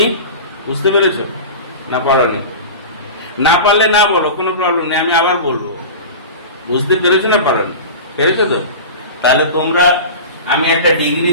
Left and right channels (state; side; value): inverted; both; correlation -0.31